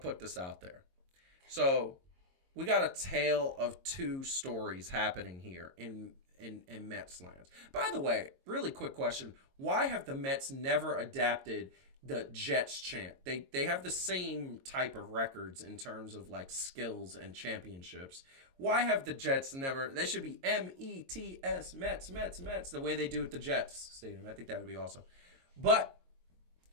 this out there. So, we got a tale of two stories happening here in Mets lands. By the way, really quick question. Why have the Mets never adapted the Jets chant? They have the same type of records in terms of skills and championships. Why have the Jets never... They should be M-E-T-S, Mets, Mets, Mets, the way they do at the Jets Stadium. I think that would be awesome. But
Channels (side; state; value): left; late; 22 ms